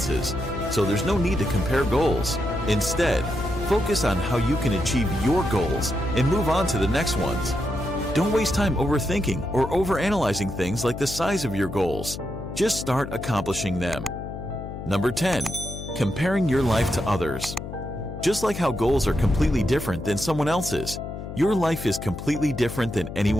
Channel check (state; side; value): noise; left; hum, 9 dB below the sound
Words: so there's no need to compare goals. Instead, focus on how you can achieve your goals and move on to the next ones. Don't waste time overthinking or overanalyzing things like the size of your goals. Just start accomplishing them. Number 10. Comparing your life to others. Just like how goals are completely different than someone else's, your life is completely different than